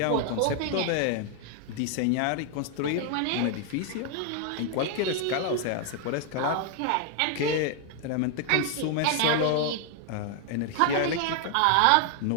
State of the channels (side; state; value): both; different; correlation 0.00